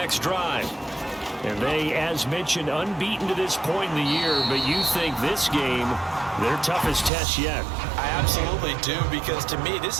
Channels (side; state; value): left; drops out; at 7.1 s